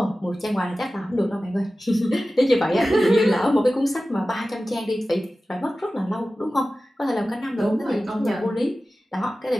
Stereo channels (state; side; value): normal; both; correlation 0.95